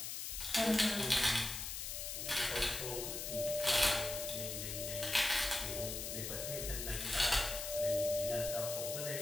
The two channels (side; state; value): left; noise; hiss, 4 dB below the sound